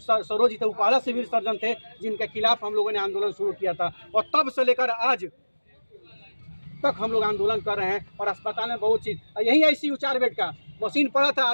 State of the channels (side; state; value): both; inverted; correlation -1.00